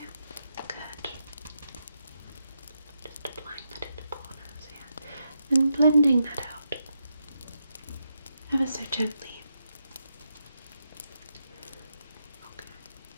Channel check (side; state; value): both; inverted; correlation -0.83